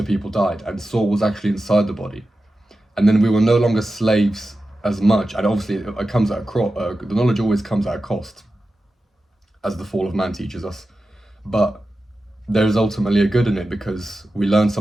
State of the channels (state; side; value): normal; both; correlation 0.93